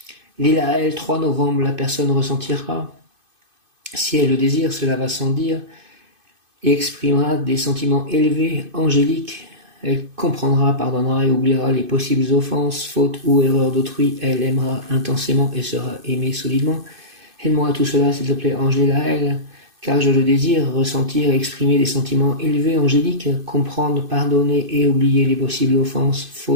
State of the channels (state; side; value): late; left; 2.5 ms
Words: Les, la, elle, 3 novembre, la personne ressentira, si elle le désire, cela va sans dire, et exprimera des sentiments élevés, angéliques. Elle comprendra, pardonnera et oubliera les possibles offenses, fautes ou erreurs d'autrui. Elle aimera intensément et sera aimée solidement. Aide-moi à tout cela, s'il te plaît, ange, les, la, elle, car je le désire, ressentir et exprimer des sentiments élevés, angéliques, comprendre, pardonner et oublier les possibles offenses,